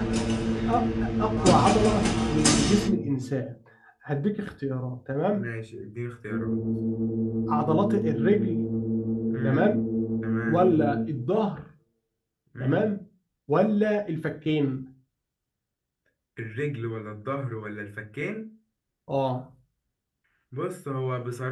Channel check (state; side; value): identical; both; correlation 1.00